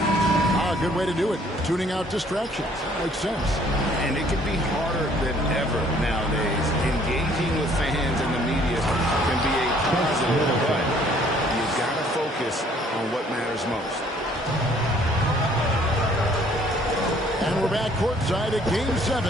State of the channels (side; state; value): both; normal; correlation 0.60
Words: Good way to do it. Tuning out distractions. Makes sense. And it can be harder than ever nowadays. Engaging with fans and the media can be a positive, but you've got to focus on what matters most. And we're back courtside at Game 7